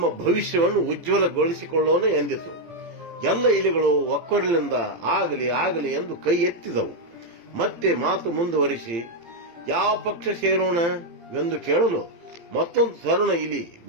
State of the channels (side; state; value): left; late; 18 ms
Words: ಭವಿಷ್ಯವನ್ನು ಉಜ್ವಲಗೊಳಿಸಿಕೊಳ್ಳೋಣ ಎಂದಿತು. ಎಲ್ಲ ಇಲಿಗಳು ಒಕ್ಕೊರಲಿನಿಂದ ಆಗಲಿ ಆಗಲಿ ಎಂದು ಕೈ ಎತ್ತಿದವು. ಮತ್ತೆ ಮಾತು ಮುಂದುವರಿಸಿ ಯಾವ ಪಕ್ಷ ಸೇರೋಣ ಎಂದು ಕೇಳಲು ಮತ್ತೊಂದು ತರುಣ ಇಲಿ